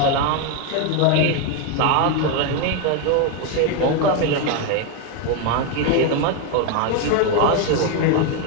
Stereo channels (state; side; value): different; both; correlation 0.02